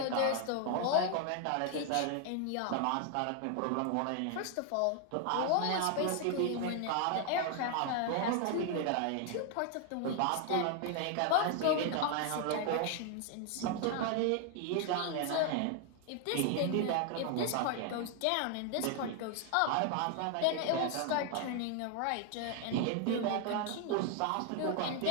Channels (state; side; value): different; both; correlation 0.00